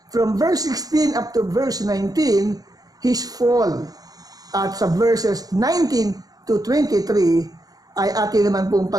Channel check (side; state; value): left; late; 0.18 ms